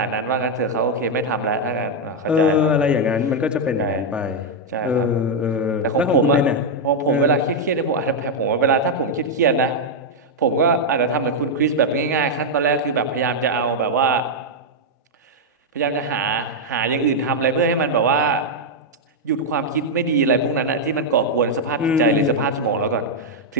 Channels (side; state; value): both; normal; correlation -0.01